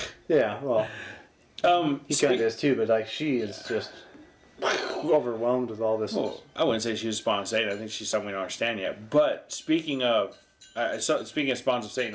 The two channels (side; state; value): both; identical; correlation 1.00